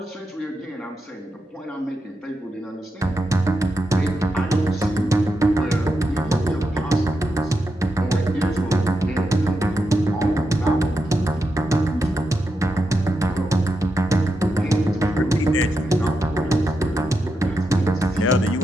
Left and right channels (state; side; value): normal; both; correlation 0.86